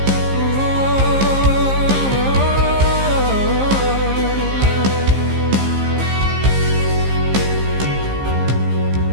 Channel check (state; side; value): late; left; 15 ms